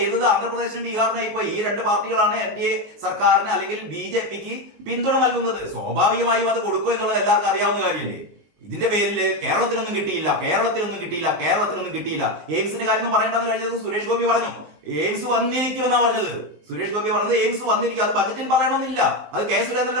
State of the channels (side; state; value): left; late; 19 ms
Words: ആന്ധ്രാപ്രദേശിനും ബീഹാറിനും. ഇപ്പൊ ഈ 2 പാർട്ടികളാണ് NDA സർക്കാരിന് അല്ലെങ്കിൽ BJPക്ക് പിന്തുണ നൽകുന്നത്. സ്വാഭാവികമായും അത് കൊടുക്കുക എന്നുള്ളത് എല്ലാവർക്കും അറിയാവുന്ന കാര്യമല്ലേ. ഇതിന്റെ പേരിൽ കേരളത്തിനൊന്നും കിട്ടിയില്ല. എയിംസിന്റെ കാര്യം പറയേണ്ടെന്ന് കഴിഞ്ഞത് സുരേഷ് ഗോപി പറഞ്ഞു. എയിംസ് വന്നിരിക്കുമെന്നാണ് പറഞ്ഞത്. സുരേഷ് ഗോപി പറഞ്ഞത് എയിംസ് വന്നിരിക്കും, അത് ബജറ്റിൽ പറയണമെന്നില്ല. അത് K.